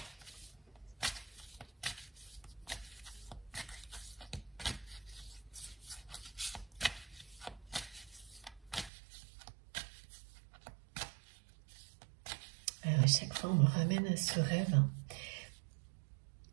chaque fois, on me ramène à ce rêve.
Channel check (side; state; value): left; drops out; at 8.9 s